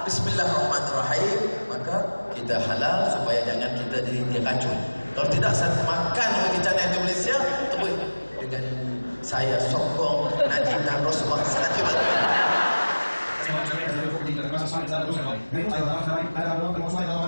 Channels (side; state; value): both; inverted; correlation -1.00